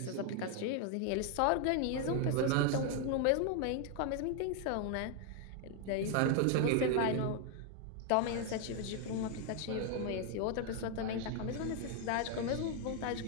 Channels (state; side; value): different; both; correlation 0.00